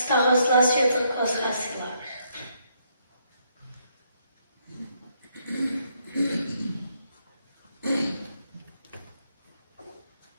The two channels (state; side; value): inverted; both; correlation -0.74